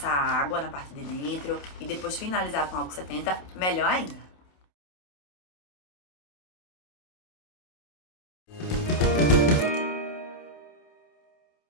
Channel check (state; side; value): late; right; 28 ms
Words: água na parte de dentro e depois finalizar com álcool 70, melhor ainda.